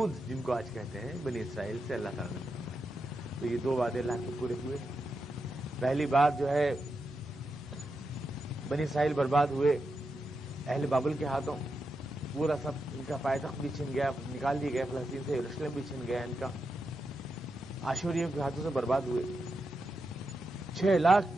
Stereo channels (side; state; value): both; normal; correlation 0.87